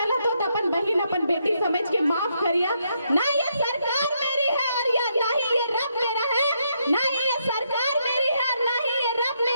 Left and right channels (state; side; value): inverted; both; correlation -0.77